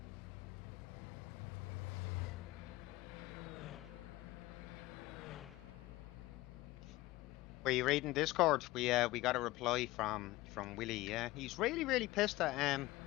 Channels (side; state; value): right; quieter; 18.5 dB